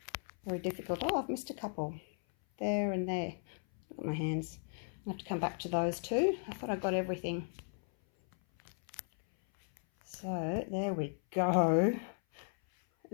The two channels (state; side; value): silent; right; 54 dB below the other